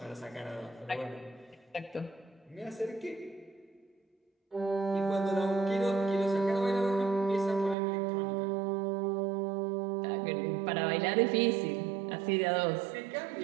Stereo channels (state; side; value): drops out; left; at 7.8 s